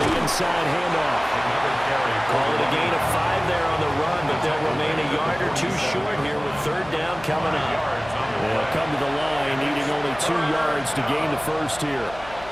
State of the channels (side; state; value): left; noise; hum, 17 dB below the sound